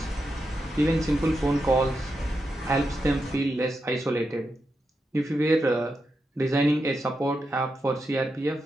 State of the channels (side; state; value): both; normal; correlation 0.86